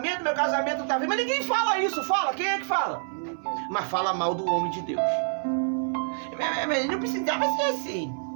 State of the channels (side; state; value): left; silent; 58 dB below the other